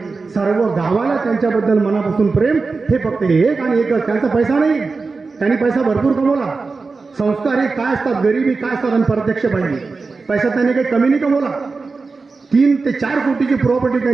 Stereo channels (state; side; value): quieter; left; 4.2 dB